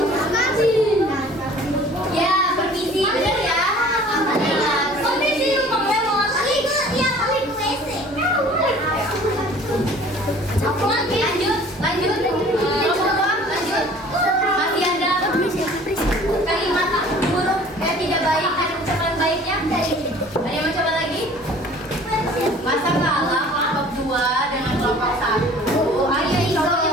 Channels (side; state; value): both; normal; correlation 0.49